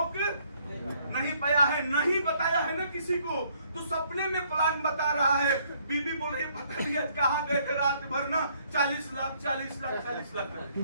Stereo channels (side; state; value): both; inverted; correlation -0.66